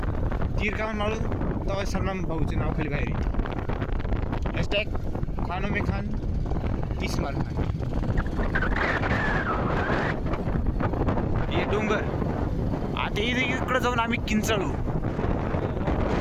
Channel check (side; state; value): both; identical; correlation 1.00